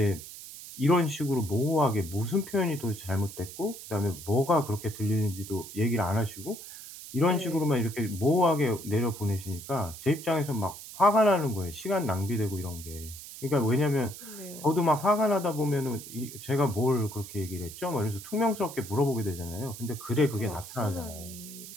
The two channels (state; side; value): noise; right; hiss, 13 dB below the sound